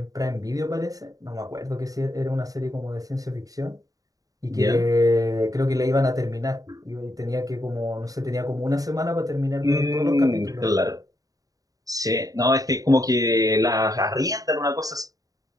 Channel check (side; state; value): left; late; 0.17 ms